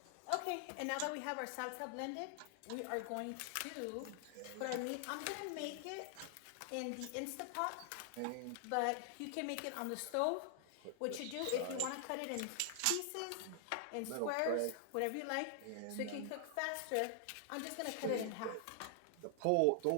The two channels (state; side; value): different; both; correlation 0.00